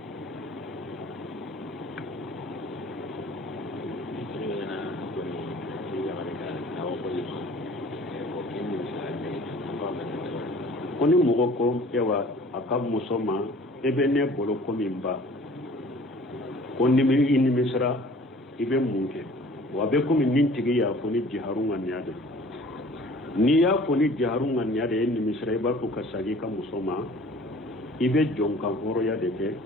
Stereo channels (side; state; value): both; normal; correlation 0.50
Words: koni mogo ko ewa akab musoma ebe ne bolo ko mimba konni mi inni misra ibe munke wa be ko min nintigi ya foni jiharunga nyade ni ya foni jiharunga nyade inni misra iba ko kasagi ka musoma ibe jonka horo ya deke